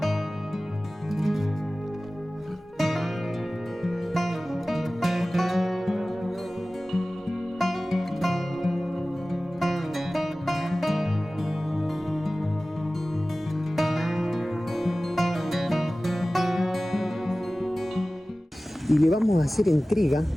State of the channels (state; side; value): normal; both; correlation 0.97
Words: Y le vamos a hacer entrega